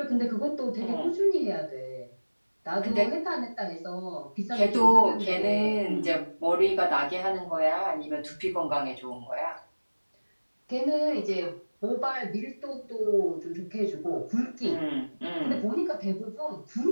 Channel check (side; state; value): both; inverted; correlation -1.00